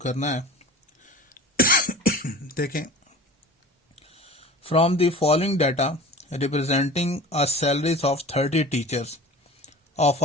है। देखें, from the following data representing a salaries of 30 teachers of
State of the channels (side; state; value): both; normal; correlation 0.40